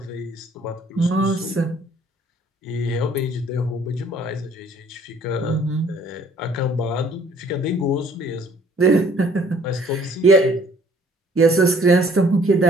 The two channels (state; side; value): normal; both; correlation 0.58